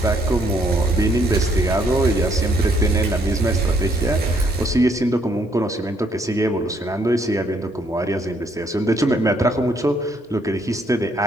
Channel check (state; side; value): normal; both; correlation 0.69